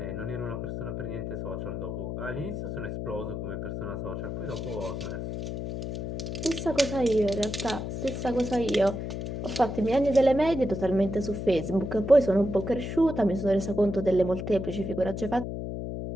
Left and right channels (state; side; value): noise; left; hum, 5 dB below the sound